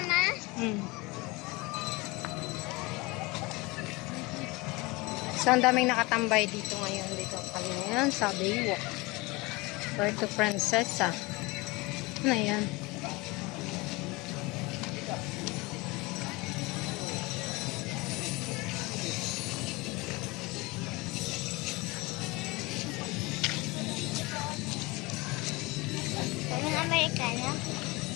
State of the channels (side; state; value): right; quieter; 23.5 dB